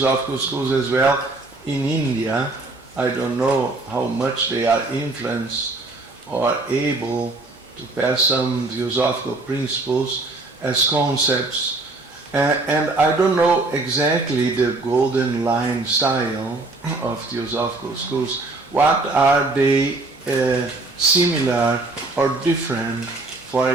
schools as well in India. I don't know how much they are influenced or able to pass some theosophical principles as concepts. And I don't know exactly the golden line style of theosophical schools. What are they similar or different, for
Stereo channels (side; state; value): left; quieter; 3.2 dB